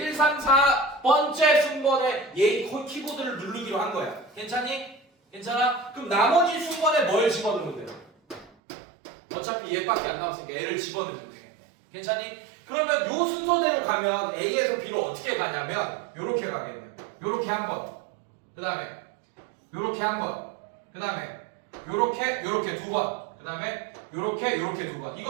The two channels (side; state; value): left; drops out; at 8.5 s